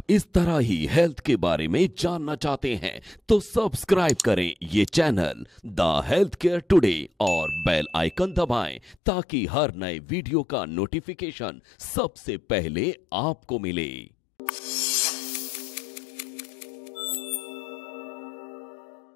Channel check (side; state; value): right; drops out; at 9.0 s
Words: इस तरह ही हेल्थ के बारे में जानना चाहते हैं तो सब्सक्राइब करें ये channel the health care today और बेल आइकन दबाएं, ताकि हर नए वीडियो का नोटिफिकेशन सबसे पहले आपको मिले।